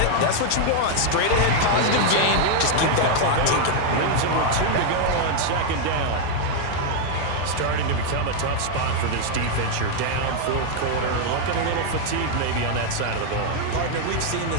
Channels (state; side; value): different; both; correlation 0.00